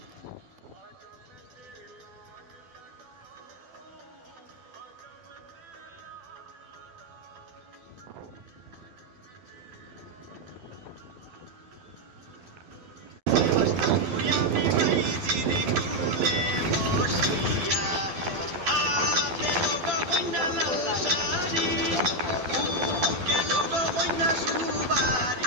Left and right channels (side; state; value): left; late; 12 ms